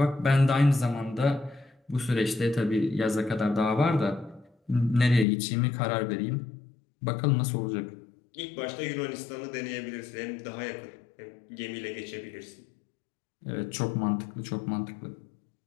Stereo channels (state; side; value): drops out; right; at 5.2 s